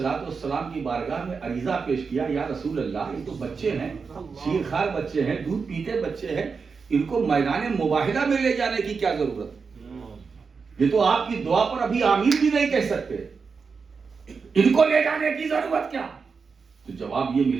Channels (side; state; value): left; quieter; 5.2 dB